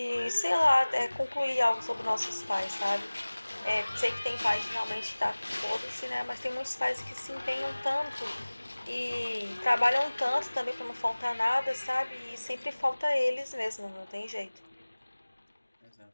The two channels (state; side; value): inverted; both; correlation -1.00